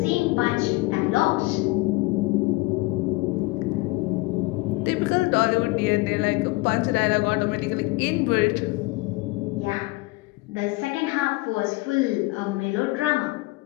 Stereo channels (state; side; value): quieter; right; 23.0 dB